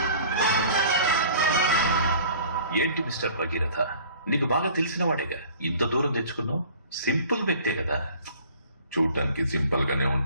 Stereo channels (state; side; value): inverted; both; correlation -0.49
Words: ఏంటి మిస్టర్ భగీరథ, నీకు బాగా తెలిసిన వాడేగా, ఇంత దూరం తెచ్చుకున్నావు? సింపుల్ వ్యక్తే కదా. చూడటానికి సింపుల్ గానే